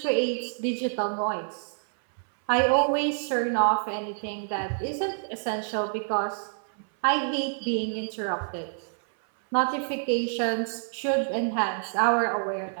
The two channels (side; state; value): left; silent; 60 dB below the other